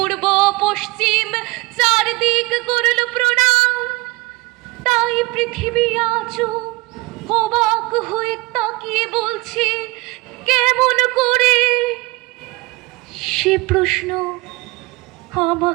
পশ্চিম চারদিক করল প্রণাম। তাই পৃথিবী আজও অবাক হয়ে তাকিয়ে বলছে কেমন করে। সে প্রশ্ন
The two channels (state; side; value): quieter; left; 22.6 dB